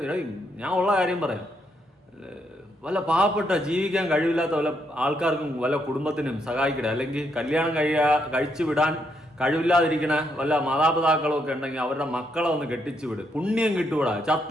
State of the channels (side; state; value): both; normal; correlation 0.77